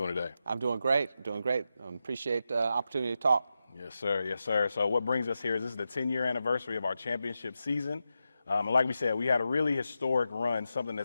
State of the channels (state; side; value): inverted; both; correlation -0.89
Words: today? I'm doing great. Appreciate the opportunity to talk. Yes, sir. Yes, sir. So what brings us here is this is the 10-year anniversary of our championship season. And like we said, we had a really historic run, something